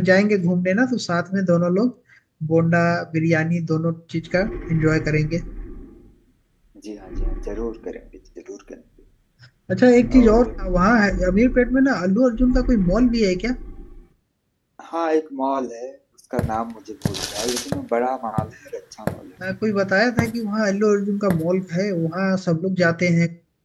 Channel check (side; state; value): both; identical; correlation 1.00